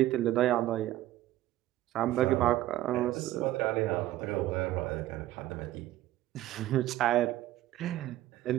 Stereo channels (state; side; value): quieter; left; 14.8 dB